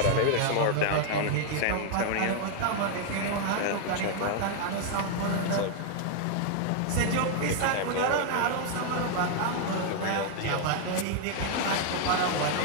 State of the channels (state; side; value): different; both; correlation 0.00